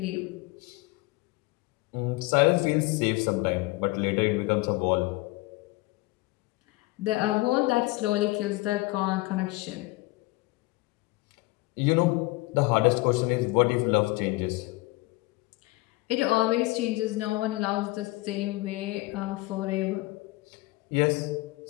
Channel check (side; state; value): right; quieter; 21.6 dB